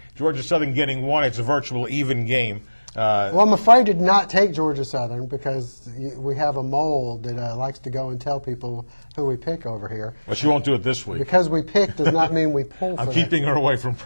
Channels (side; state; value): both; inverted; correlation -1.00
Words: Georgia Southern getting one. It's a virtual even game. Well, I'm afraid to not take Georgia Southern because we have a mole that likes to go and tell people who we pick over here. Well, she won't do it this week. Because we pick does not mean we pull for I'm keeping her away from